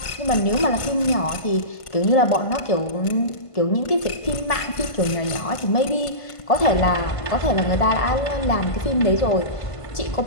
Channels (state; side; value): late; right; 1.5 ms